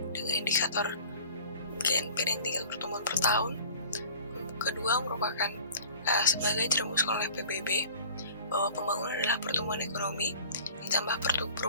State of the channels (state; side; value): inverted; both; correlation -0.44